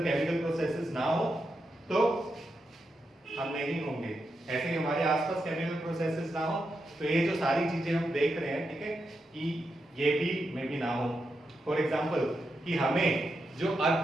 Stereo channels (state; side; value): normal; both; correlation 0.86